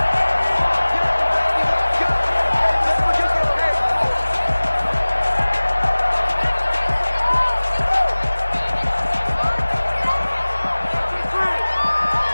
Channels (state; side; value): inverted; both; correlation -1.00